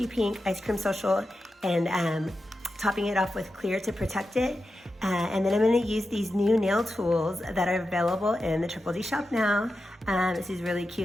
Pink Ice Cream Social and topping it off with clear to protect it. And then I'm going to use these new nail tools that are available in the Triple D shop now. It's these really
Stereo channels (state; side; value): normal; both; correlation 0.90